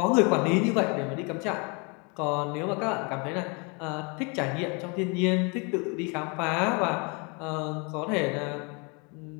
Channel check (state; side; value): quieter; right; 31.9 dB